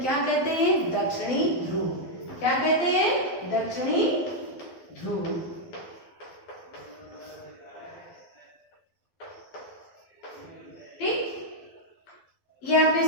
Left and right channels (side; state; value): right; late; 12 ms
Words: कहते हैं? दक्षिणी ध्रुव। क्या कहते हैं? दक्षिणी ध्रुव। ठीक, ये आपने